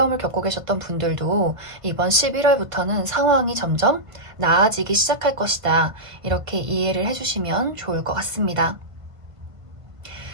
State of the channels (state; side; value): late; left; 1.5 ms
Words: 겪고 계셨던 분들도 이번 11월부터는 상황이 점점 나아지기 시작할 것이다. 이렇게 이해를 해주시면 좋을 것 같습니다.